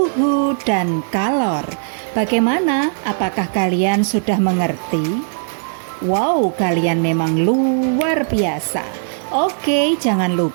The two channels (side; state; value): left; silent; digital silence